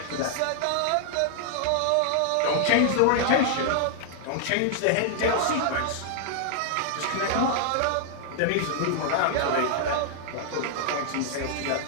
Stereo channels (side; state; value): both; different; correlation 0.00